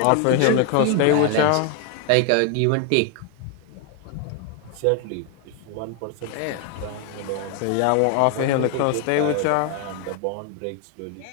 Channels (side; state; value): both; different; correlation 0.01